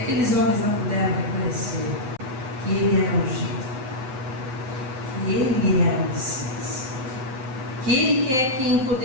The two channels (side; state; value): left; late; 7.8 ms